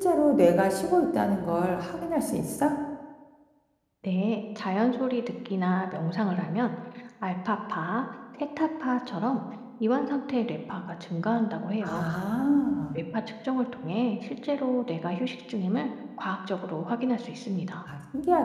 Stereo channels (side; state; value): both; identical; correlation 1.00